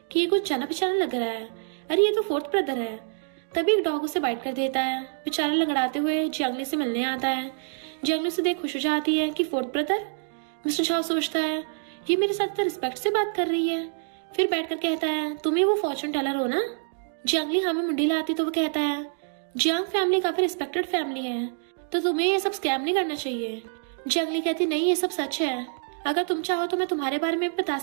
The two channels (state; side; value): silent; left; digital silence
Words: कि ये कुछ जाना पहचाना लग रहा है, अरे ये तो 4th ब्रदर है। तभी एक डॉग उसे बाइट कर देता है। बेचारा लंगड़ाते हुए जंगली से मिलने आता है। जंगली से देख खुश हो जाती है कि 4th ब्रदर। मिस्टर शाओ सोचता है ये मेरे साथ तो रिस्पेक्ट से बात कर रही है। फिर बैठकर कहता है तुम ही वो फॉर्चून टेलर हो ना। जंगली हाँ में मुंडी लाती तो वो कहता है जियांग फैमिली काफी रिस्पेक्टेड फैमिली है, तो तुम्हें ये सब स्कैम नहीं करना चाहिए। जंगली कहती नहीं ये सब सच है, अगर तुम चाहो तो मैं तुम्हारे बारे में बता